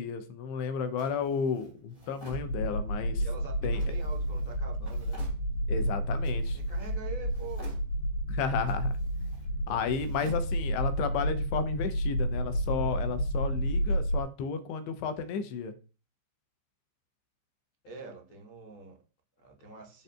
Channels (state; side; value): late; right; 15 ms